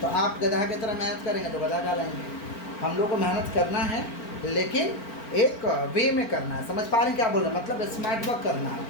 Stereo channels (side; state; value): right; late; 4.4 ms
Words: तो आप गधा की तरह मेहनत करेंगे तो गधा कहलाएंगे। हम लोग को मेहनत करना है, लेकिन एक वे में करना है। समझ पा रहे हैं क्या बोल रहे हैं? मतलब स्मार्ट वर्क करना है